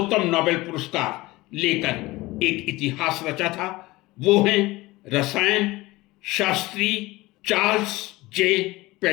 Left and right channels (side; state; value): right; quieter; 20.0 dB